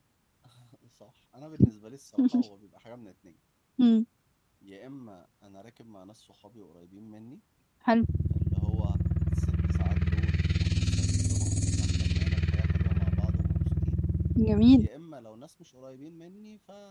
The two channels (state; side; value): identical; both; correlation 1.00